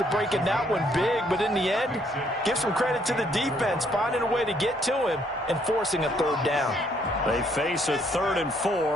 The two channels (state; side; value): normal; both; correlation 0.68